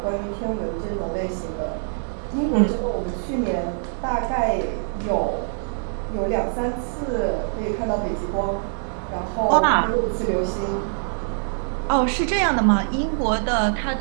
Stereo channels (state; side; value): silent; left; 57 dB below the other